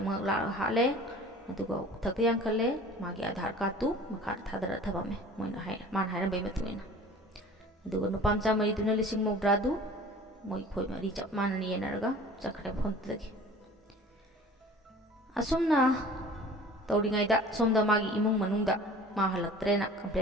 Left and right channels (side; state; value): both; normal; correlation 0.45